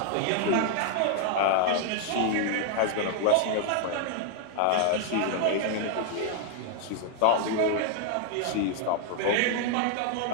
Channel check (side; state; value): both; different; correlation 0.00